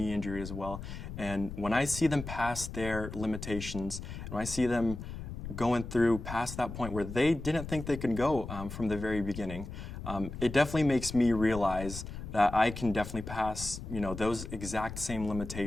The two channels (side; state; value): left; noise; rumble, 9 dB below the sound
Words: injury as well, and when I see them past their limitations, and when I see them going through past that point where they didn't think they could go from the very beginning, it definitely makes me realize that I can definitely pass, those exact same